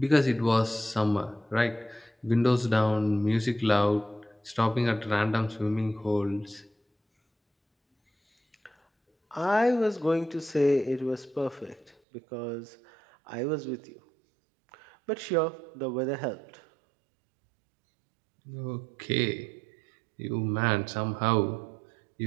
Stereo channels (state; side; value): drops out; left; at 12.0 s